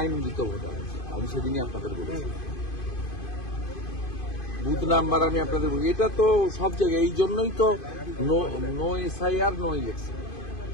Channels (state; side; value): late; right; 2.5 ms